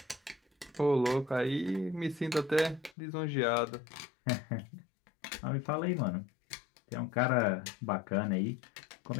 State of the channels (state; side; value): drops out; right; at 3.0 s